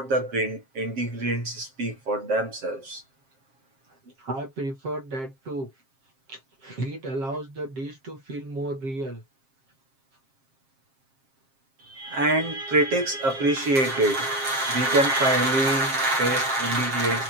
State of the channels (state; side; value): late; left; 7.5 ms